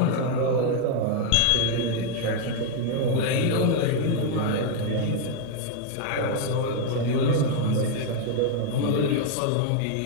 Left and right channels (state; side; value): different; both; correlation 0.00